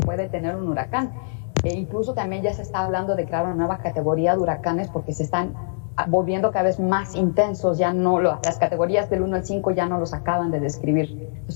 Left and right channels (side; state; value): right; silent; digital silence